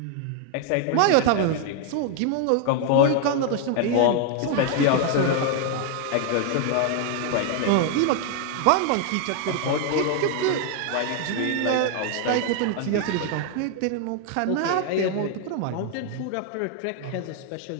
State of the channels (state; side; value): different; both; correlation 0.00